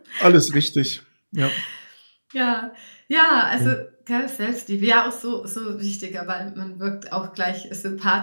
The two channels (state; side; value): inverted; both; correlation -1.00